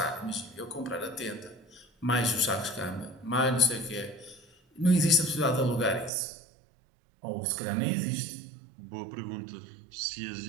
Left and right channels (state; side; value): drops out; left; at 6.1 s